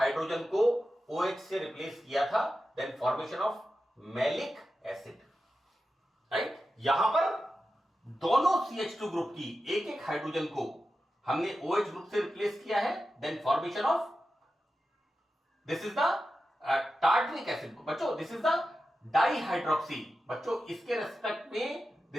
को OH से रिप्लेस किया था, then formation of malic acid, right. यहां पर दोनों CH2 ग्रुप की एक एक हाइड्रोजन को हमने OH ग्रुप से रिप्लेस किया है, then formation of this is the tartaric acid बच्चों, दिस इज द डाइहाइड्रोक्सी बच्चों, इसके रेस्पेक्ट में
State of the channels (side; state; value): both; normal; correlation 0.92